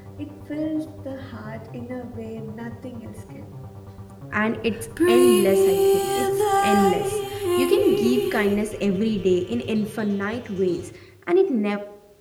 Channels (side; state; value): both; identical; correlation 1.00